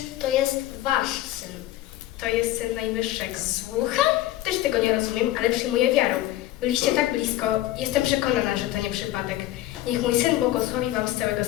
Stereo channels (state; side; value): quieter; right; 15.0 dB